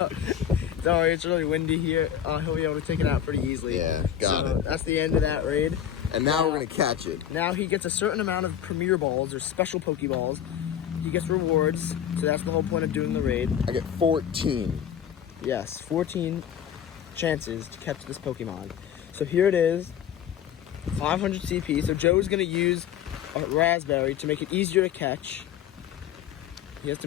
Sorry, it's really windy here. He'll be able to take it out pretty easily. Yeah, got it. That's the end of that raid. And now we're gonna catch it. Now he gets a certain amount of Premier Balls or special Pokeballs. He gets rewards, so that's the whole point of doing the raid. I get 14. Yes, 14 chances to catch this Pokemon. So here it is, 500 CP. So Joe's gonna use a Raspberry to make it easier to catch. He has to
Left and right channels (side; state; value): right; quieter; 9.7 dB